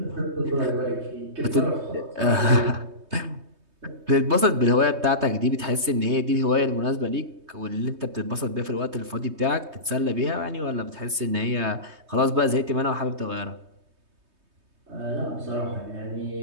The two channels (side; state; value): left; late; 3.2 ms